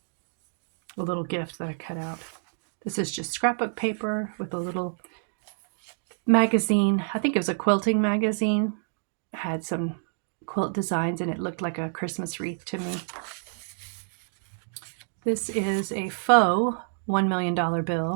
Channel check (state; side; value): silent; left; 60 dB below the other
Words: A little gift that I cut out. This is just scrapbook paper with a little magazine. I think it was a quilting magazine. It had some quilt designs and it looked like a Christmas wreath to me. This is a faux $1 million